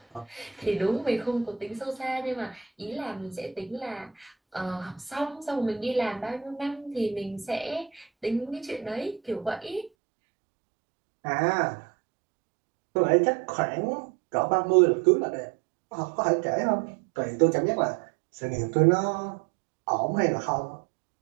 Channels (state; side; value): drops out; left; at 9.9 s